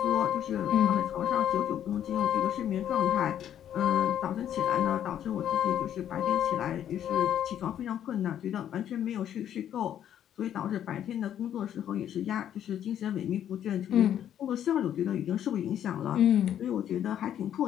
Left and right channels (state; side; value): quieter; right; 10.3 dB